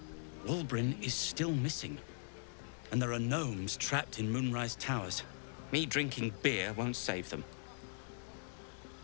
Walbrin is still missing. And there are gnomes trapped in Moonrise Towers. Me drinking beer won't save them.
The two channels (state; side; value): silent; right; digital silence